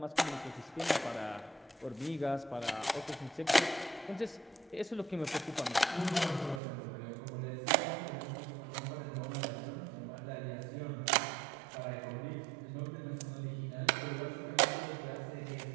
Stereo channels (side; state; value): left; drops out; at 6.6 s